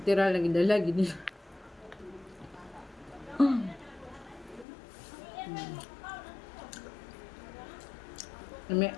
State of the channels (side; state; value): right; drops out; at 4.7 s